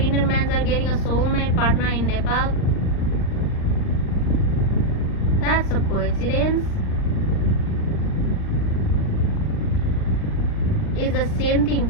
men are getting a soulmate partner in Nepal. That's a coincidence. It's the same thing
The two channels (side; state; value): right; late; 39 ms